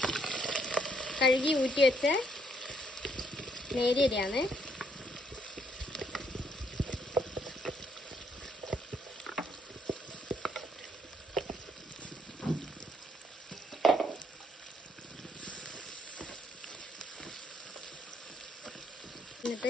കഴുകി ഊറ്റി വെച്ച നേരിയ അരിയാണ്.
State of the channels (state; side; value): normal; both; correlation 0.71